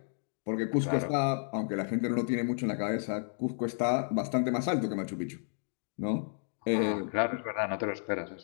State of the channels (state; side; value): silent; right; digital silence